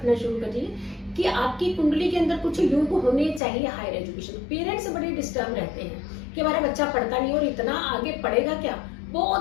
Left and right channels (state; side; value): drops out; right; at 3.4 s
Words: शुरू करिए कि आपकी कुंडली के अंदर कुछ योग होने चाहिए हायर एजुकेशन। पेरेंट्स बड़े डिस्टर्ब रहते हैं कि हमारा बच्चा पढ़ता नहीं और इतना आगे पढ़ेगा क्या,